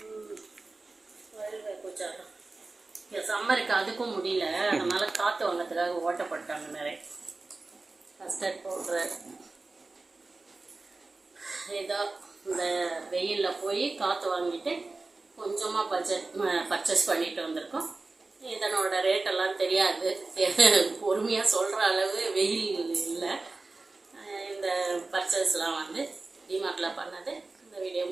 ரயில்வே பூஜா சம்மருக்கு அதுக்கும் முடியல, அதனால காற்று வாங்கிறதுக்காக ஓட்டப்பட்டாங்க நிறைய. Custard powder. ஏதோ இந்த வெயிலில் போய் காற்று வாங்கிட்டு கொஞ்சமாக பர்ச்சேஸ் பண்ணிட்டு வந்திருக்கோம். இதனோட ரேட்டெல்லாம் தெரியாது, பொறுமையாக சொல்கிற அளவு வெயில் இல்லை. இந்த பர்ச்சேஸ்லாம் டிமார்ட்டில் பண்ணது. இந்த வீடியோ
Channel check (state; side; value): quieter; left; 3.5 dB